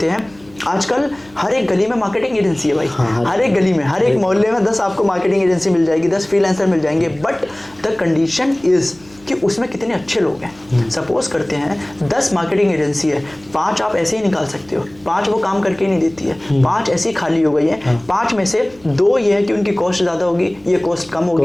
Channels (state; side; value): noise; right; hum, 26 dB below the sound